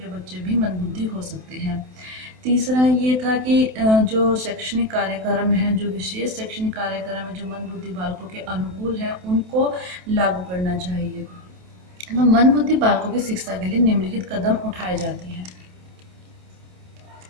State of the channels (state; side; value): late; left; 27 ms